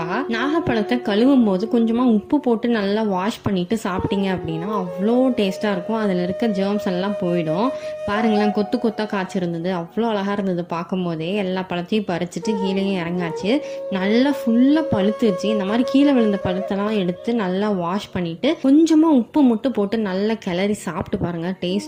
நாகப்பழத்தை கழுவும் போது கொஞ்சமாக உப்பு போட்டு நல்லா வாஷ் பண்ணிவிட்டு சாப்பிட்டீங்க அப்படின்னா அவ்வளோ டேஸ்ட்டாக இருக்கும். அதில் இருக்க ஜேர்ம்ஸ் எல்லாம் போயிடும். பாருங்களேன், கொத்து கொத்தாக காய்ச்சிருந்தது, அவ்வளோ அழகாக இருந்தது. பார்க்கும் போதே எல்லா பழத்தையும் பறிச்சுட்டு கீழே இறங்காச்சு. நல்லா ஃபுல்லாக பழுத்துச்சு. இந்த மாதிரி கீழே விழுந்த பழுத்தெல்லாம் எடுத்து நல்லா வாஷ் பண்ணிட்டு கொஞ்சமாக உப்பு மட்டும் போட்டு நல்லா கிளறி சாப்பிட்டு பாருங்க.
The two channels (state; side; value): identical; both; correlation 1.00